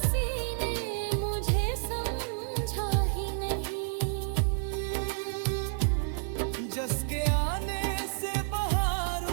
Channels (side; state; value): left; silent; digital silence